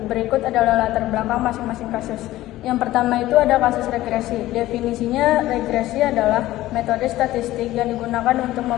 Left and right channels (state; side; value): quieter; right; 15.8 dB